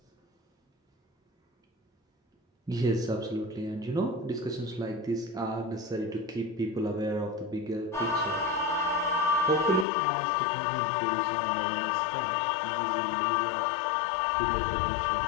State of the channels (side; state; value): right; drops out; at 9.9 s